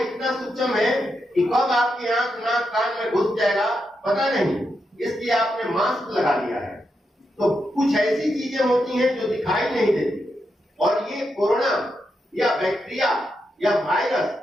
इतना सूक्ष्म है कि कब आपकी आंख नाक कान में घुस जाएगा पता नहीं, इसलिए आपने मास्क लगा लिया है। तो कुछ ऐसी चीजें होती हैं जो दिखाई नहीं देती। और ये कोरोना या बैक्टीरिया या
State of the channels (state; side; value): normal; both; correlation 0.84